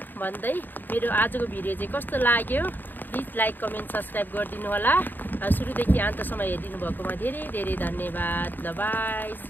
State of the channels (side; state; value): right; late; 0.091 ms